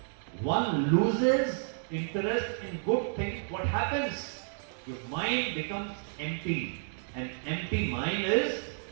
one loses interest in good things, what happens? Your mind becomes empty. An empty mind is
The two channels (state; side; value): silent; left; digital silence